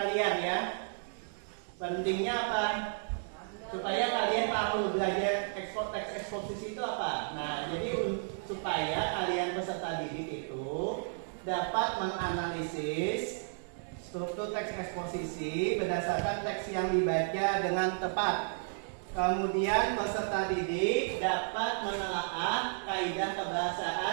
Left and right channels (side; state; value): left; silent; digital silence